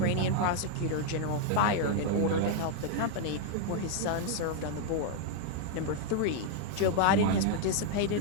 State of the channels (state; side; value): different; both; correlation 0.00